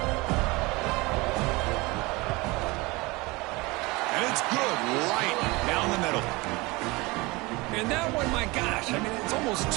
And it's good, right down the middle. And that one, my gosh, I mean, it's almost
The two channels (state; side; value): quieter; left; 23.8 dB